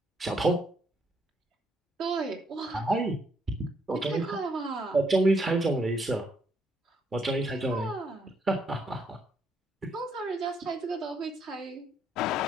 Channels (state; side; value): normal; both; correlation 0.73